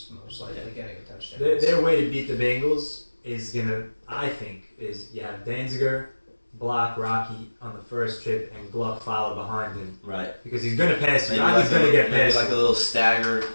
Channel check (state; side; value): inverted; both; correlation -1.00